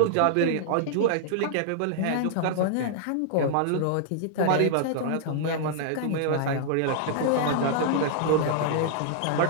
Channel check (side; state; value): both; different; correlation -0.01